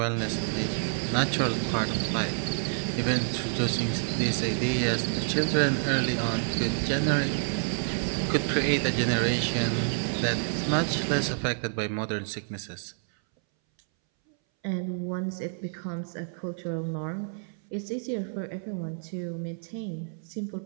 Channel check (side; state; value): left; silent; 59 dB below the other